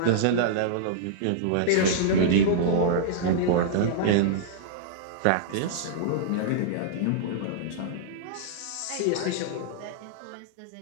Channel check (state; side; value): different; both; correlation -0.02